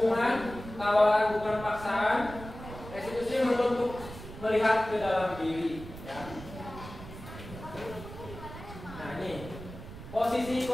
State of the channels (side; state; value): right; noise; rumble, 13 dB below the sound